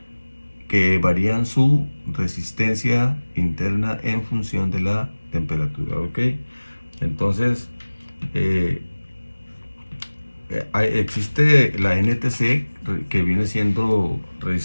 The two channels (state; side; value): inverted; both; correlation -1.00